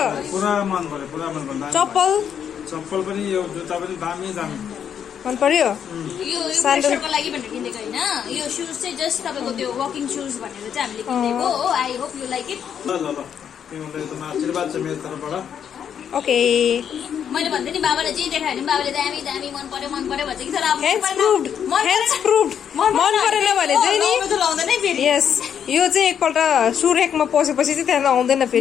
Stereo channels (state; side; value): quieter; right; 8.4 dB